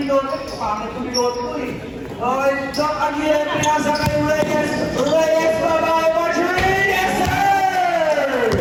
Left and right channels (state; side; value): identical; both; correlation 1.00